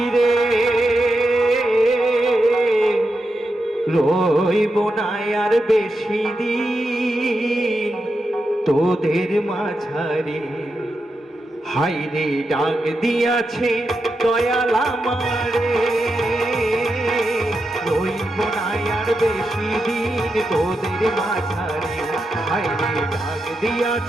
রইব না আর বেশি দিন তোদের মাঝারে। হাইরে ডাক দিয়াছে দয়াল আমারে, রইব না আর বেশি দিন তোদের মাঝারে। হাইরে ডাক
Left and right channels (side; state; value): both; normal; correlation 0.87